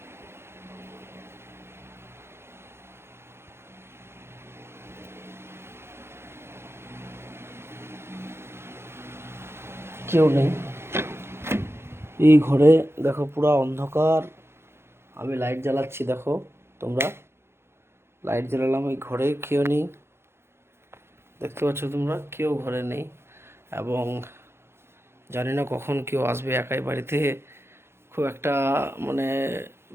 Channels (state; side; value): late; left; 0.12 ms